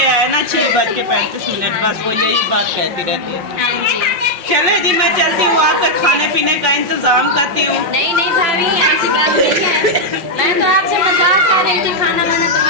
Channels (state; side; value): late; left; 5.5 ms